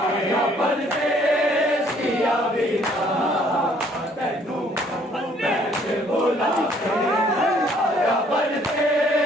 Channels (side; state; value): both; normal; correlation 0.62